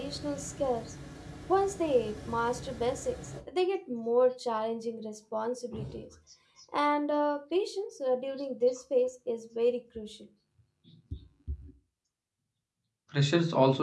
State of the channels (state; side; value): identical; both; correlation 1.00